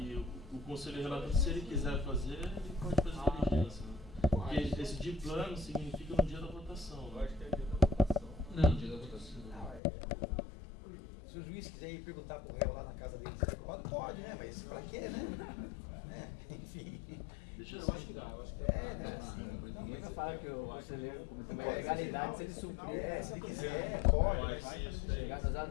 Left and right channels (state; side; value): drops out; right; at 9.8 s